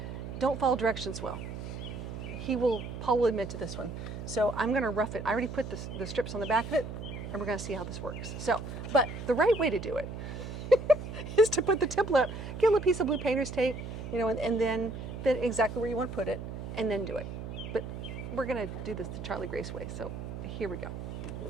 don't follow directions well. Paul will admit to this one. So I'm gonna rough it. I already put the strips on the back of it, and we're gonna see how this works. So, but the right way to do it is to put the template up, get a little piece of blue painter's tape, and then exactly where you want to put it, and then do it. But we're gonna do this the Charlie Grace way, so here we go.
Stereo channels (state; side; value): noise; right; hum, 8 dB below the sound